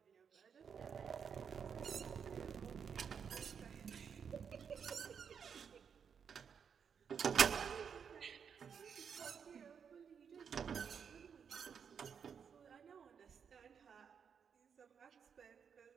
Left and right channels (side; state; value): left; quieter; 7.0 dB